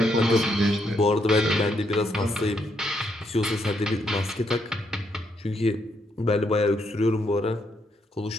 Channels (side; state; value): both; normal; correlation 0.76